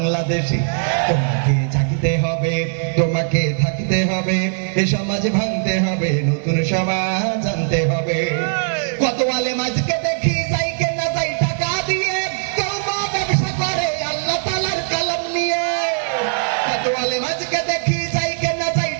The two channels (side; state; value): left; silent; digital silence